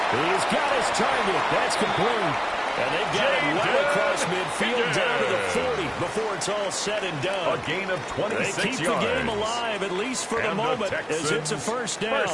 He's got his target. That's complete. And they've got it well across midfield down to the 40 before it's all said and done. A gain of 26 yards. They keep the game alive, at least for the moment, as it's a 1st down.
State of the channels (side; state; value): both; identical; correlation 1.00